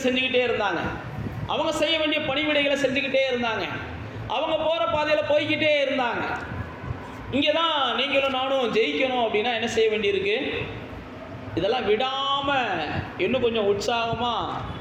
செஞ்சுக்கிட்டே இருந்தாங்க, அவங்க செய்ய வேண்டிய பணிவிடைகளை செஞ்சுக்கிட்டே இருந்தாங்க, அவங்க போகிற பாதையில் போய்கிட்டே இருந்தாங்க. இங்கே தான் நீங்களும் நானும் ஜெயிக்கணும் அப்படின்னா என்ன செய்ய வேண்டியிருக்கு, இதெல்லாம் விடாமல் இன்னும் கொஞ்சம் உற்சாகமாக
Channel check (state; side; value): identical; both; correlation 1.00